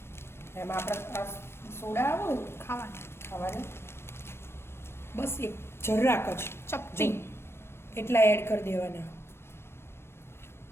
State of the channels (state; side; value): late; right; 0.12 ms